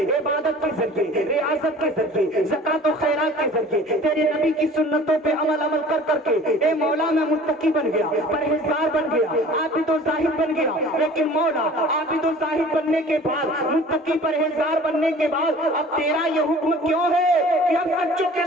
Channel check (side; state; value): both; normal; correlation 0.46